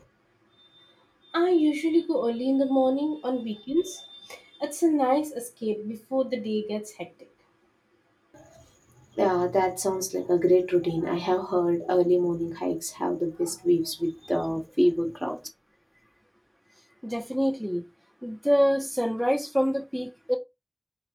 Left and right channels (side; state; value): both; identical; correlation 1.00